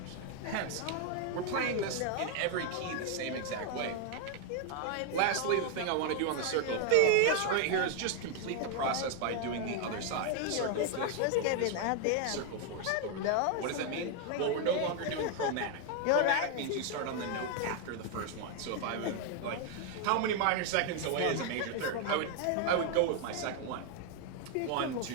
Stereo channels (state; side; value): different; both; correlation 0.01